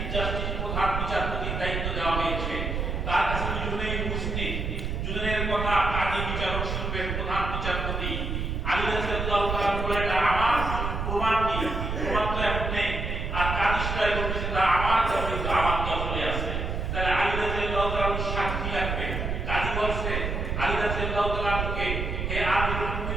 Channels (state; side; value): noise; right; rumble, 2 dB below the sound